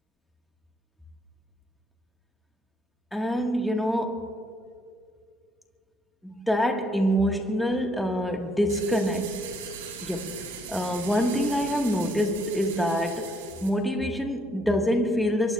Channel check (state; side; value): normal; both; correlation 0.70